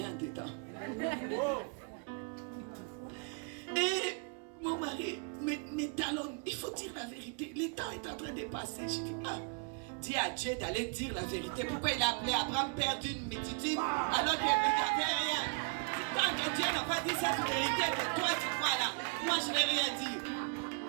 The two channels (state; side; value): quieter; left; 38.9 dB